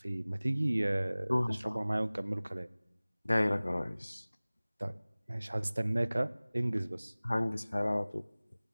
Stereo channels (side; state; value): both; inverted; correlation -0.99